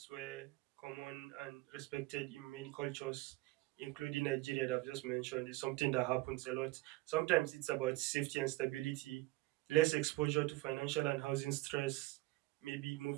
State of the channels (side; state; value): left; quieter; 19.8 dB